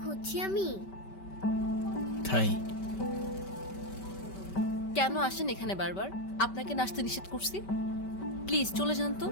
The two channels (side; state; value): right; late; 5.2 ms